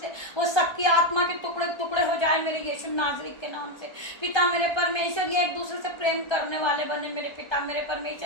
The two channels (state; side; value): late; right; 1.3 ms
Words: से, वो शक्ति आत्मा के टुकड़े टुकड़े हो जाए मेरे यीशु नाज़री के नाम से। पिता मेरे परमेश्वर, ये एक दूसरे से प्रेम करने वाले बने मेरे पिता मेरे